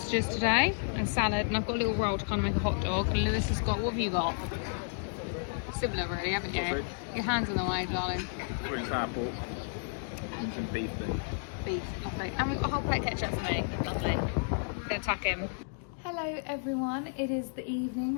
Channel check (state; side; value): silent; right; digital silence